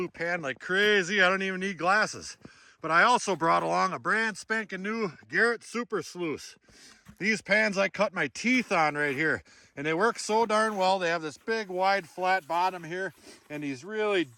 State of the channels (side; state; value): both; identical; correlation 1.00